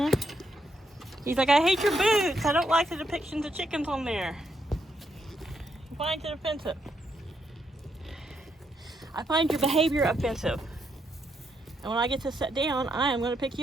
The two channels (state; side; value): normal; both; correlation 0.78